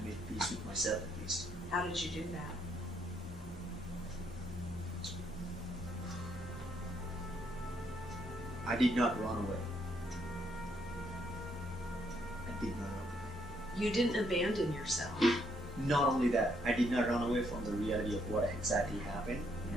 make peace with myself at least. How did you do that? I did not run away. I did not run away. You didn't abandon yourself. Not only that, I did not run away from the reality of what exactly happened,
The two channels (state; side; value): normal; both; correlation 0.72